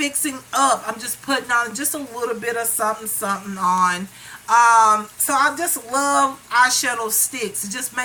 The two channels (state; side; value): identical; both; correlation 1.00